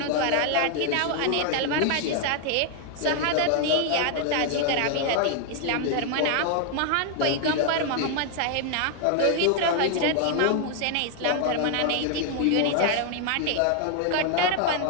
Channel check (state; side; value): different; both; correlation 0.00